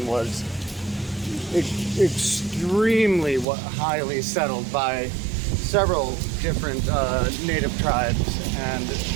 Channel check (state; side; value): drops out; left; at 3.5 s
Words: was extremely highly settled by several different native tribes, and